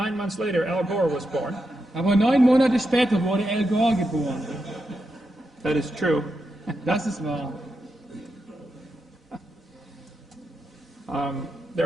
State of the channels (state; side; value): normal; both; correlation 0.86